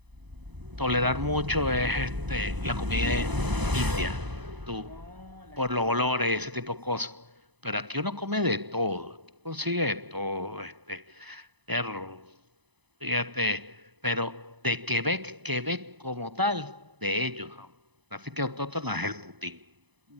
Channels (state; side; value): late; left; 1.0 ms